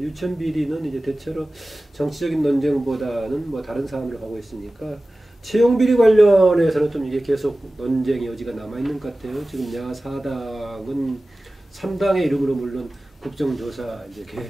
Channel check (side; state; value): both; normal; correlation 0.96